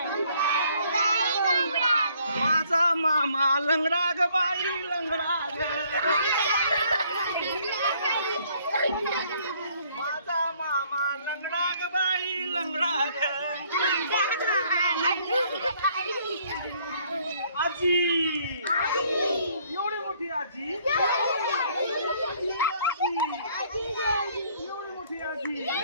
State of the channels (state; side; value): inverted; both; correlation -0.63